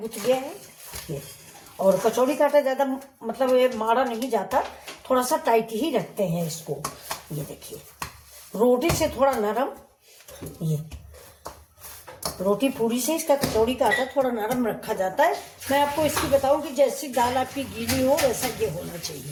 गया है ये। और कचौड़ी का आटा ज़्यादा मतलब ये माड़ा नहीं जाता, थोड़ा सा टाइट ही रखते हैं इसको। ये देखिए रोटी से थोड़ा नरम, ये रोटी पूरी से इसका कचौड़ी का आटा थोड़ा नरम रखा जाता है। मैं आपको इसकी बताऊं कि जैसी दाल आपकी गीली हो वैसा ये होना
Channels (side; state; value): both; identical; correlation 1.00